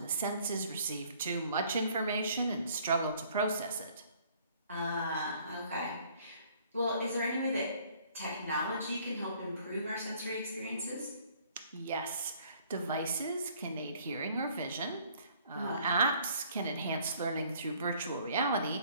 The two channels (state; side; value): inverted; both; correlation -0.59